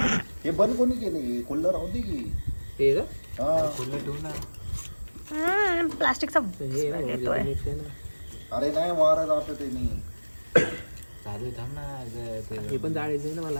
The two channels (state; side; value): inverted; both; correlation -1.00